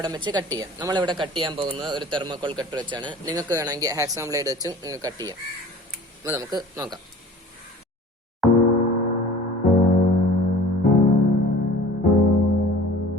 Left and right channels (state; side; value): normal; both; correlation 0.45